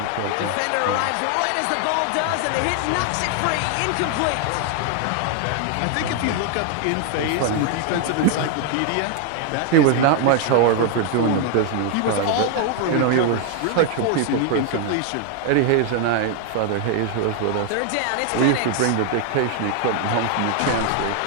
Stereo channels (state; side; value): different; both; correlation 0.00